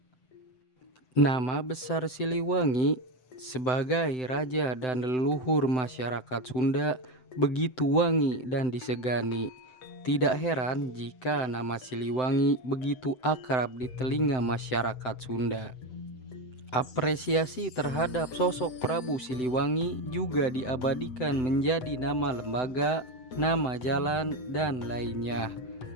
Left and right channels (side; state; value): right; late; 7.9 ms